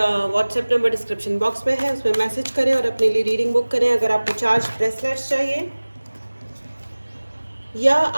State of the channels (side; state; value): both; inverted; correlation -1.00